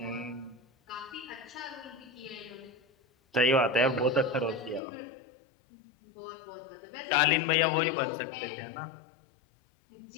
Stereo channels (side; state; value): right; drops out; at 4.8 s